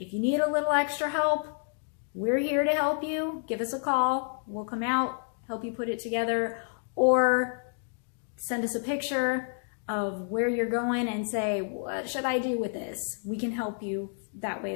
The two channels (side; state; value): right; silent; 56 dB below the other